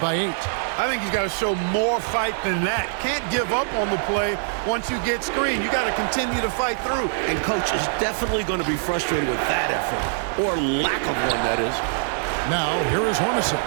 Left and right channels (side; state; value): left; silent; digital silence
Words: by 8. I think he's got to show more fight than that. Can't give up on the play once you get screened. You got to continue to fight through. And coach is definitely going to be frustrated with that effort, or lack of one, that is. Now, here is Hornacek.